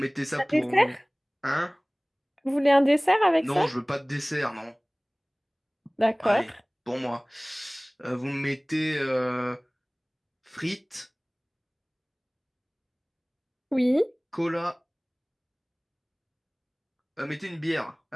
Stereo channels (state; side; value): identical; both; correlation 1.00